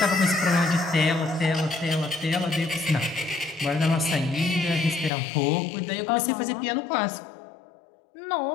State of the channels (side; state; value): right; drops out; at 5.1 s